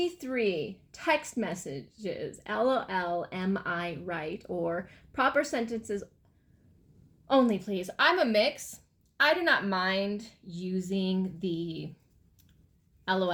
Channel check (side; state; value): both; identical; correlation 1.00